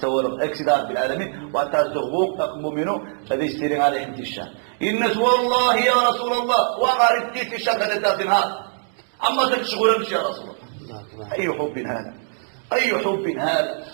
أكسدار بالعالمين وأتازغوك أقمومينو هذا يستيرين على حمد الشام الناس والله يا رسول الله وغارب تيت الشام هذا دافن هذا أما تشغل مش يا رسول الله أي حب هذا أي حب هذا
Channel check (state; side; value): silent; left; digital silence